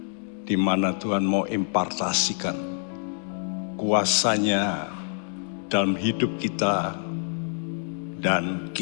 di mana Tuhan mau impartasikan kuasanya dalam hidup kita dan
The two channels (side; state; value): right; silent; 61 dB below the other